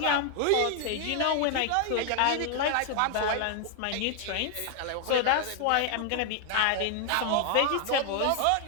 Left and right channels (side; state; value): both; different; correlation 0.00